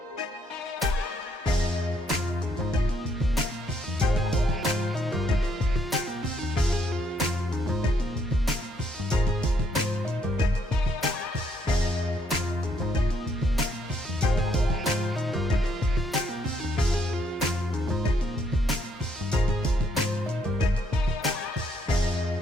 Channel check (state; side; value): normal; both; correlation 0.71